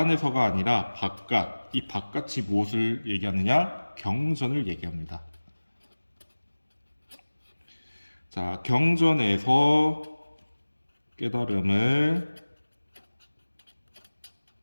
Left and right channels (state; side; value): inverted; both; correlation -1.00